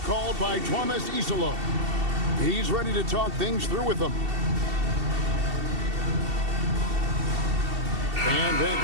by Thomas Isolo. He's ready to talk things through with them. And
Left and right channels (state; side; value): late; left; 2.7 ms